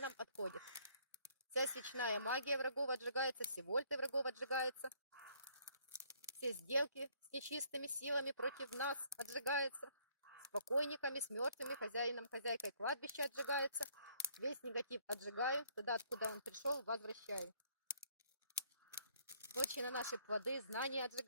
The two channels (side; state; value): both; inverted; correlation -0.64